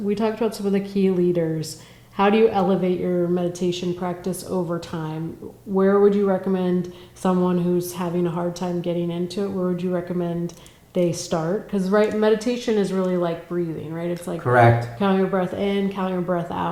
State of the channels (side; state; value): both; identical; correlation 1.00